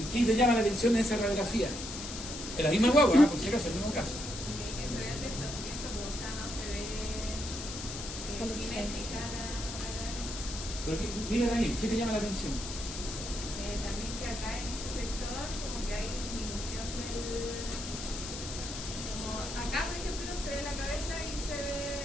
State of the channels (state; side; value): noise; left; hiss, 8 dB below the sound